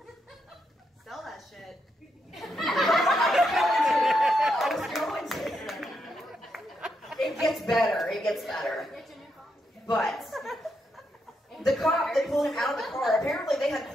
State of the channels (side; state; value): both; normal; correlation 0.81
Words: Sell that shit. I was going to. It gets better. It gets better. But the cop that pulled him out of the car, apparently they had